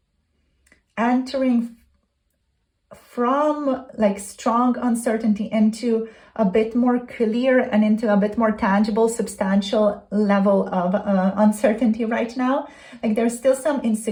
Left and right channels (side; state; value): both; identical; correlation 1.00